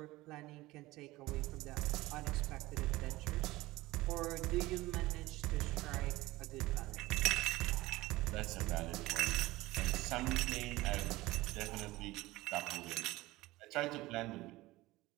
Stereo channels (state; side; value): quieter; left; 19.0 dB